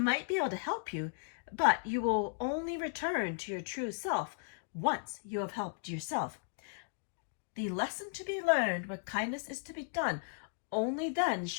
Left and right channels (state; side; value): silent; right; digital silence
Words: be able to help you, but you will only return to your true self once you have helped yourself. The lesson to be learned where kindness is to be done, only then